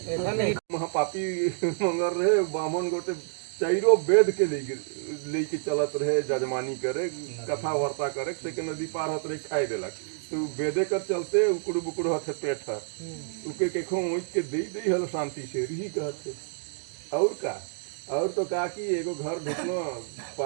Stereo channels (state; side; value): silent; left; digital silence